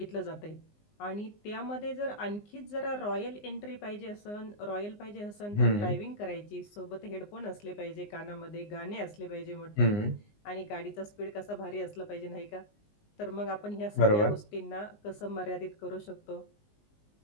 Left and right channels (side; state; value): right; late; 19 ms